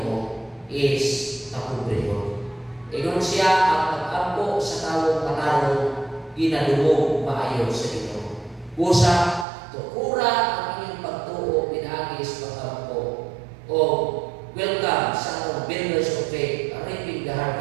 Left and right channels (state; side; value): drops out; left; at 9.5 s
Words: is kapobrehon. Ingon siya ang pag-ampo sa tawong katarong ginadumog maayo sa Ginoo. Busa tukura ang inyong pagtuo pinaagis pag-ampo. O welcome sa atong Builders of Faith, reaping the